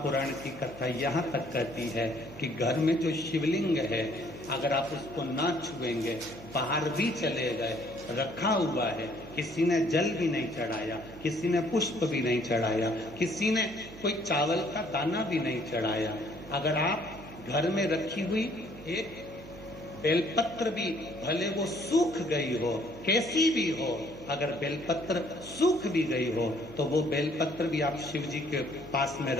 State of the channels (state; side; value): noise; right; hum, 17 dB below the sound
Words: की कथा यहाँ तक कहती है कि घर में जो शिवलिंग है अगर आप उसको ना छुएंगे, बाहर भी चले गए, रखा हुआ है, किसी ने जल भी नहीं चढ़ाया, किसी ने पुष्प भी नहीं चढ़ाया, किसी ने कोई चावल का दाना भी नहीं चढ़ाया, अगर आप घर में रखी हुई एक बेलपत्र भी भले वो सूख गई हो, कैसी भी हो, अगर बेलपत्र सूख भी गई हो तो वो बेलपत्र भी आप शिव जी के पास में